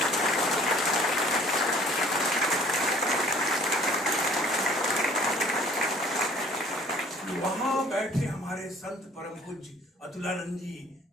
वहां बैठे हमारे संत परम पूज्य अतुलानंद जी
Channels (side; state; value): both; normal; correlation 0.53